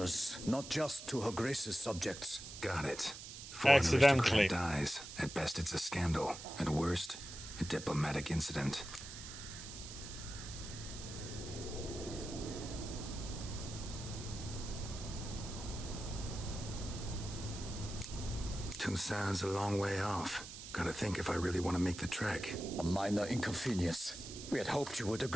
not just to Her Grace's subjects. Got it. Accidentally dies. At best, it's a scandal. At worst, a diplomatic incident. Toussaint's a long way off. Gotta think if I really want to make the trek. A minor inconvenience. We had hoped you would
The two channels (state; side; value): noise; right; hiss, 11 dB below the sound